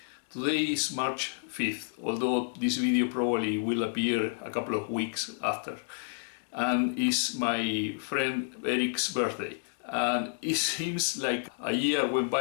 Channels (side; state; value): right; silent; digital silence